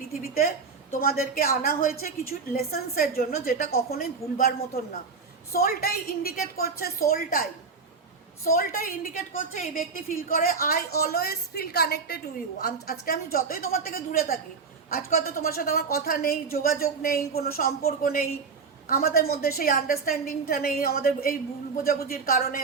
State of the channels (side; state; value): left; quieter; 5.1 dB